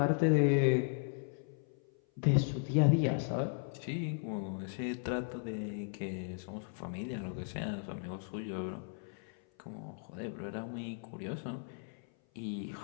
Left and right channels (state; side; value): silent; right; 54 dB below the other